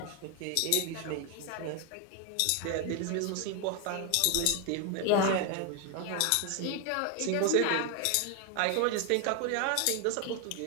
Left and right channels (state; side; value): different; both; correlation 0.01